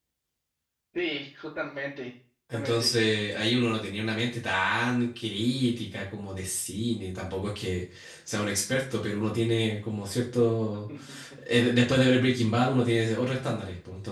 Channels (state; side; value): identical; both; correlation 1.00